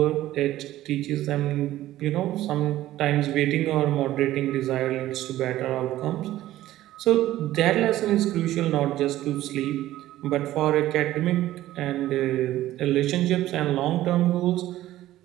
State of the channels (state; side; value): quieter; left; 14.6 dB